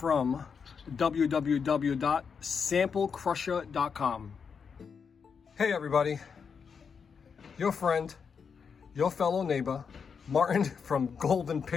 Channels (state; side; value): quieter; right; 6.2 dB